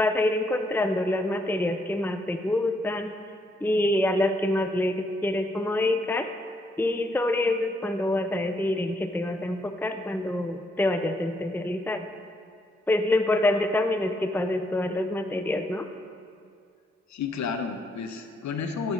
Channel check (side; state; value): both; normal; correlation 0.75